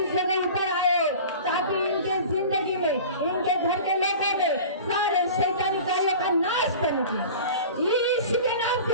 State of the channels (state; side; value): inverted; both; correlation -0.38